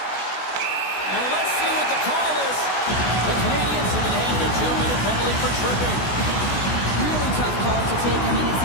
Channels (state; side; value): late; right; 16 ms